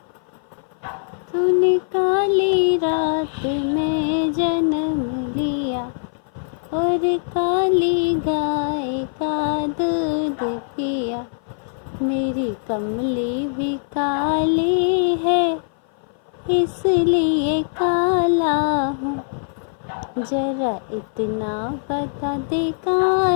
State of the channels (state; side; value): silent; right; 56 dB below the other